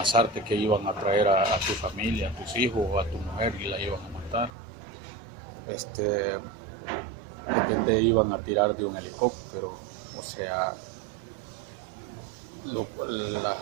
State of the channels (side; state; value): left; drops out; at 4.5 s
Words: que iban a traer a tu familia, a tus hijos o a tu mujer y la iban a matar, de que te iban a tirar de un helicóptero, o sea,